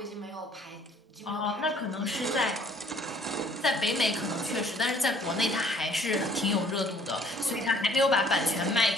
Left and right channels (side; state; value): both; normal; correlation 0.59